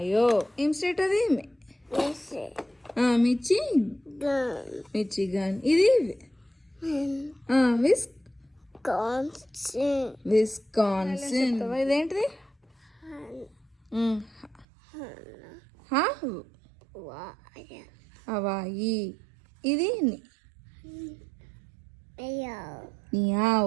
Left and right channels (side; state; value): left; drops out; at 14.7 s